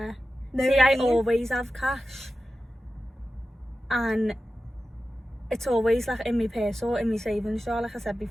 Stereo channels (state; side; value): normal; both; correlation 0.93